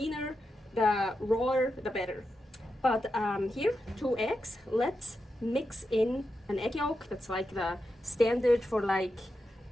the rawer, the better. But here, 2 eggs. Let's mix in an egg yolk. That's like the standard for like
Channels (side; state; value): both; normal; correlation 0.88